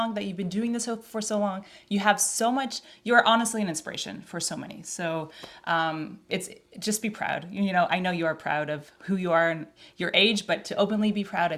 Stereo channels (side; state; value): both; identical; correlation 1.00